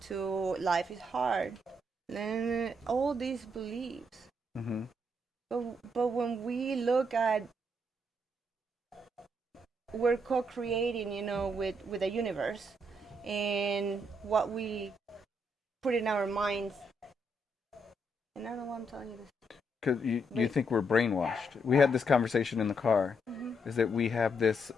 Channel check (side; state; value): both; normal; correlation 0.76